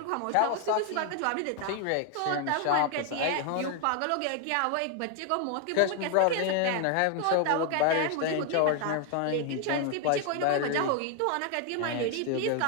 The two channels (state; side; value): different; both; correlation 0.01